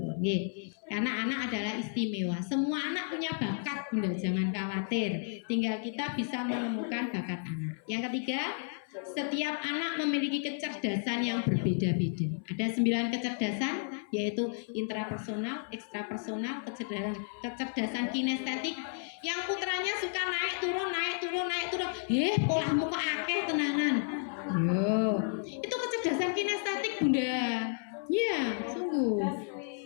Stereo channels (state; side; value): silent; right; 56 dB below the other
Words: nggih. Karena anak adalah istimewa. Semua anak punya bakat Bunda, jangan khawatir. Tinggal kita bisa menemukan bakat anak. Yang ketiga, setiap anak memiliki kecerdasan yang berbeda-beda. Ada 9 kecerdasan, yaitu intrapersonal, ekstrapersonal, kecerdasan kinestetik. Yang putranya suka naik turun. Polahmu kok akeh tenanan. Yo, itu kecerdasan kinestetik Bunda. Ya, sungguh